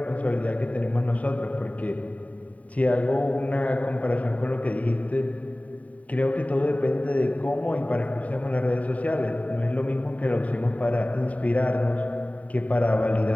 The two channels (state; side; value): late; right; 0.069 ms